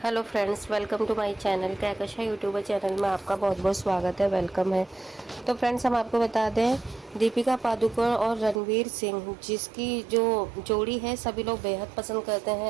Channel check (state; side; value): drops out; left; at 8.6 s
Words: friends, welcome to my channel. Kahkasha YouTuber channel में आपका बहुत बहुत स्वागत है, वेलकम है। तो फ्रेंड्स, हम आपको बता दें, दीपिका पादुकोण और रणवीर सिंह जिसकी जो जोड़ी है सभी लोग बेहद पसंद करते